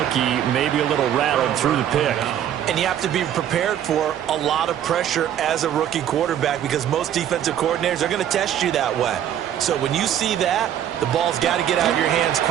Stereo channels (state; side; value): quieter; left; 10.4 dB